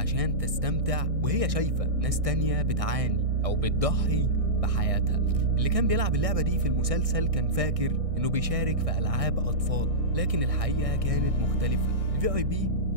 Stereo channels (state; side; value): late; left; 1.6 ms